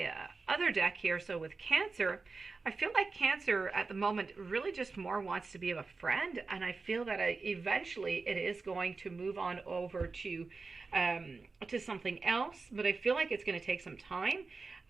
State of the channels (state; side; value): quieter; left; 4.1 dB